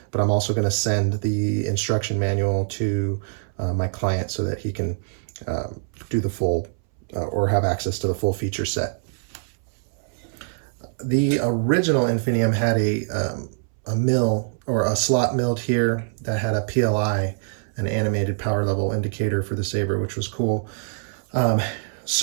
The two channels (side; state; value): left; silent; 63 dB below the other